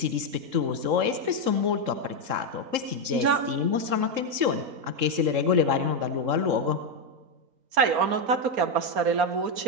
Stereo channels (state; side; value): late; left; 3.7 ms